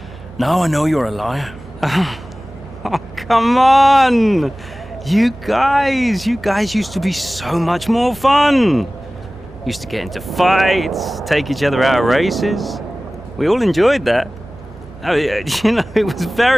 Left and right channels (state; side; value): normal; both; correlation 0.98